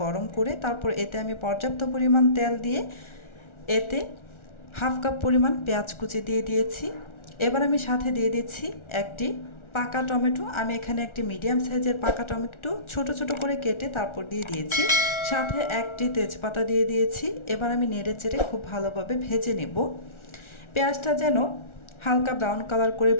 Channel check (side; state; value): right; late; 1.4 ms